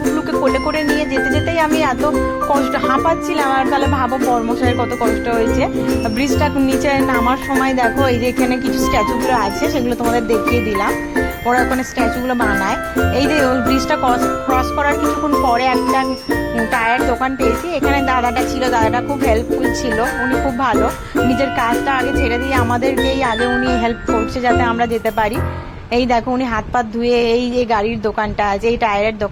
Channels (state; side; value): identical; both; correlation 1.00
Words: কোলে করে নিয়ে যেতে যেতেই আমি এত কষ্ট হাঁপাচ্ছিলাম। আর তাহলে ভাবো বর্মশাইয়ের কত কষ্ট হয়েছে। ব্রিজটা নিচে নামার সময় দেখো এই যে এখানে কিছু স্ট্যাচুগুলো আছে, সেগুলো তোমাদের দেখিয়ে দিলাম। ওরা ওখানে স্ট্যাচুগুলো বানায়। এই যে ওই ব্রিজটা ক্রস করার কিছুক্ষণ পরে একটা টায়ার দোকান পেয়েছি। এখানে দাদাটা ছিল, দাদাটা খুব হেল্পফুল ছিল, উনি খুব ভালো। নিজের কাজটা আগে ছেড়ে দিয়ে আমাদেরকেই আগে উনি হেল্প করছে যাতে আমরা যেতে পারি। এই দেখো উনি হাত পাত ধুয়ে এই যে গাড়ির দোকানটা আছে, এই টায়ারের